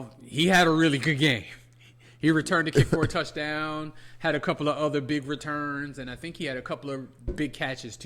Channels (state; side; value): identical; both; correlation 1.00